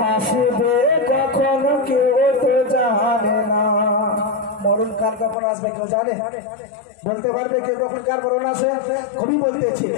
কখন কেউ তো জানে না, মোর মরণ কাল কখন আসবে কেউ জানে? বলতে পারবে কেউ কখন কার মরণ আসে? কবি বলতেছে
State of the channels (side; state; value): right; drops out; at 5.4 s